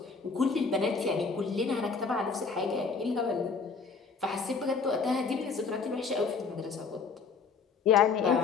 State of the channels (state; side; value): quieter; right; 5.1 dB